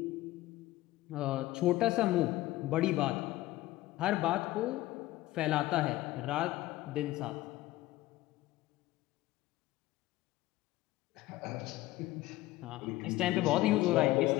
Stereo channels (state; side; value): quieter; right; 17.0 dB